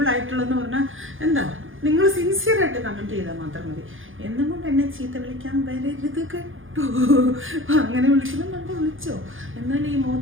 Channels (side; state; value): left; late; 0.58 ms